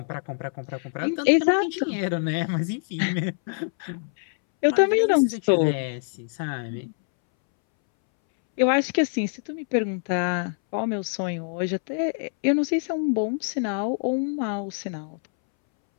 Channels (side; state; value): right; silent; 62 dB below the other